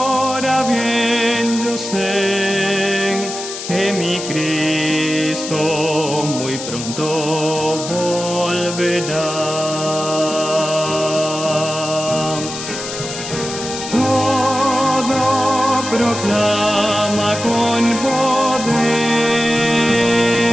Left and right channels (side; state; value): left; noise; hiss, 8 dB below the sound